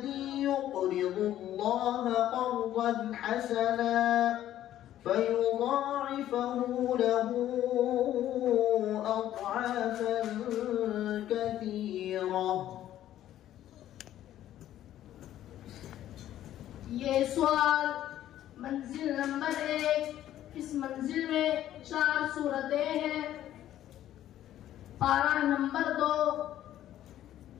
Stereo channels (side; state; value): right; quieter; 12.4 dB